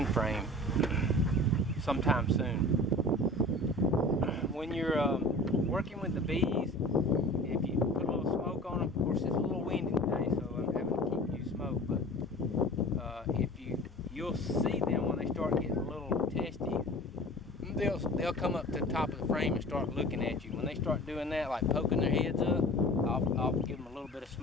frame sometime soon. When you're working with the bees, if you put a little smoke on them, of course it's a little windy today, so I'm having to keep you smoke, but you'll see them when they start getting a little testy, they'll come up to the top of the frame and start looking at you. When they start doing that, like poking their heads up, I'll give them a little bit of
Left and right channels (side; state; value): both; normal; correlation 0.41